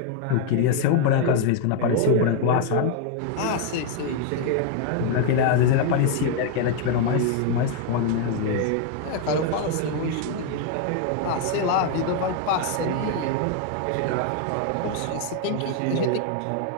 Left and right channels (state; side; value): different; both; correlation 0.00